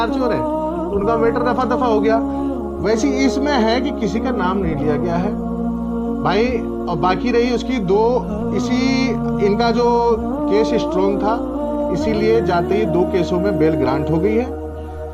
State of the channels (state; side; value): identical; both; correlation 1.00